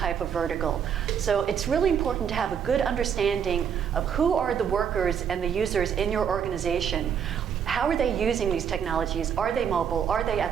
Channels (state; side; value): quieter; left; 7.9 dB